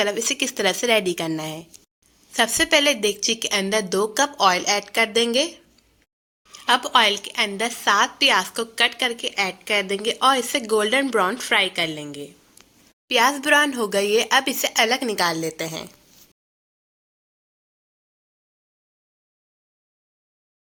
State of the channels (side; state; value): both; identical; correlation 1.00